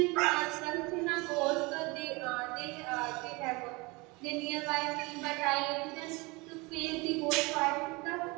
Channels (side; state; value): left; quieter; 25.8 dB